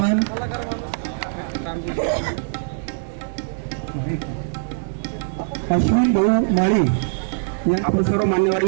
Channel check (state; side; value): silent; left; digital silence